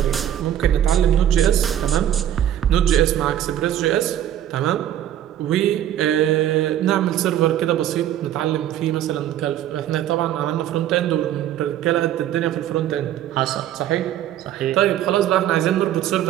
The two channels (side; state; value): left; quieter; 11.4 dB